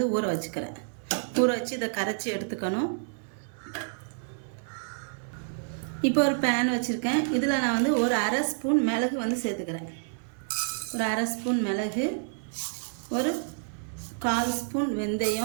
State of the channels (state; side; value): silent; left; digital silence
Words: ஊற வச்சுக்கிறேன். ஊற வச்சு இதை கரைச்சி எடுத்துக்கணும். இப்போ ஒரு பேன் வச்சுருக்கேன். இதில் நான் வந்து ஒரு அரை ஸ்பூன் மிளகு வந்து சேர்த்துக்கிறேன். ஒரு அரை ஸ்பூன் மிளகு, ஒரு 1/4 ஸ்பூன்